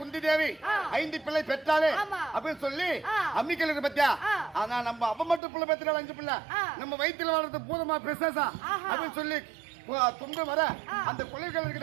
தேவி 5 பிள்ளை பெற்றாலே அப்படின்னு சொல்லி அம்மிக்கல் பத்தியா. ஆனா நம்ம அப்ப மட்டும் பிள்ளை பெற்றாலும் 5 பிள்ளை நம்ம வயிற்றுல வளர்றது பூதமா பிரசேசா அப்படின்னு சொல்லி துண்டு வர அந்த குழவிகள்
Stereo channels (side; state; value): left; drops out; at 5.4 s